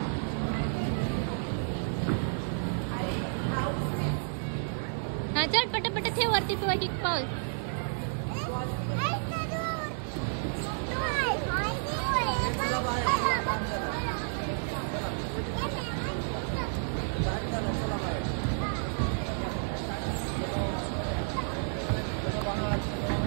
हा चल पटापट ठेव वरती तू एक पाऊल.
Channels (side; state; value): left; silent; digital silence